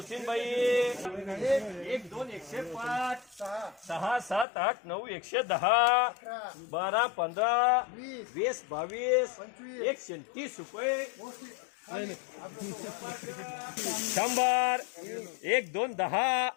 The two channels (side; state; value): right; drops out; at 4.5 s